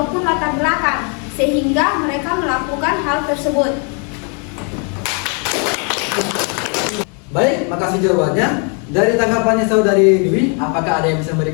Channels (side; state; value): right; quieter; 38.8 dB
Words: latar belakang, sehingga mereka melakukan hal tersebut. Baik, makasih jawabannya. Dari tanggapannya Saudari Dwi, apakah ada yang bisa